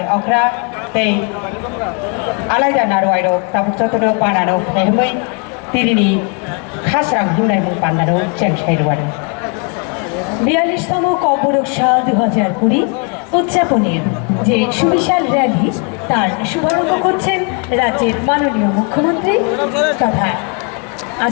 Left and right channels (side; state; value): right; quieter; 35.4 dB